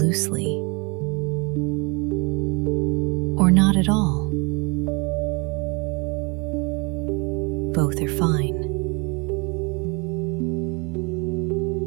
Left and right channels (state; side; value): quieter; left; 30.0 dB